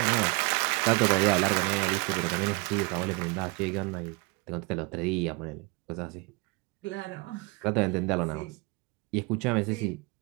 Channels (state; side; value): quieter; left; 27.8 dB